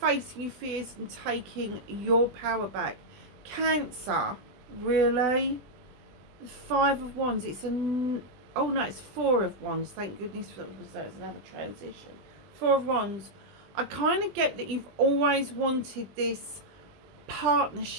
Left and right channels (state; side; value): late; left; 20 ms